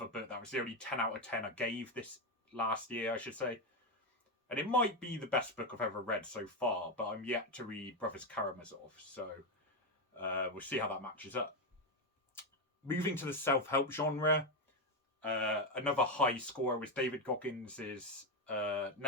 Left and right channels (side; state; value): both; normal; correlation 0.09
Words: book. That was the only 10 out of 10 I gave this last year, I should say. And it might be the best book I've ever read so far, but I'm yet to read Brothers Karamazov, so we'll see how that matches up. Moving to the self-help genre, another high scorer was David Goggins'